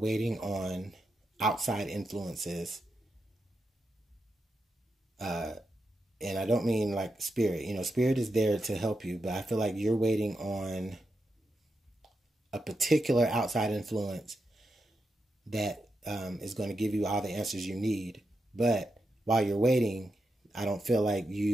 on outside influences. And I don't mean like spirit. You know, spirit is there to help you, but I feel like you're waiting on a particular outside influence that is going to give you all the answers you need. But while you're waiting, I don't feel like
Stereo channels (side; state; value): both; normal; correlation 0.86